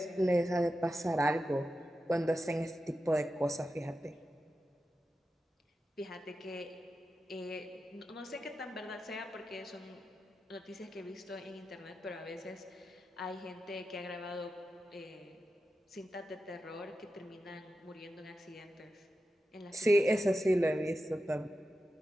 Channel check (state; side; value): normal; both; correlation 0.91